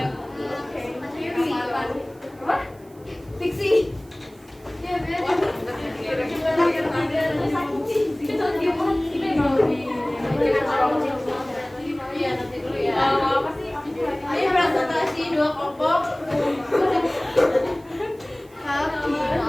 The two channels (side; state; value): right; noise; hiss, 29 dB below the sound